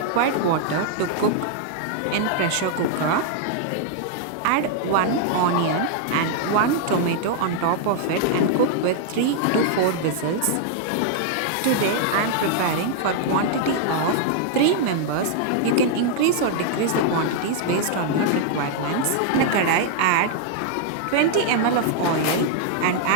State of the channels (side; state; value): both; different; correlation -0.01